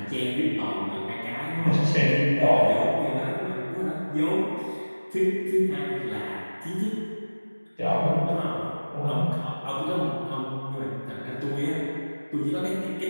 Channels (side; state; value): both; inverted; correlation -1.00